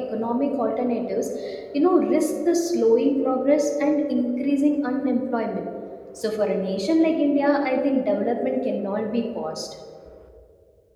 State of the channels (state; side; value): identical; both; correlation 1.00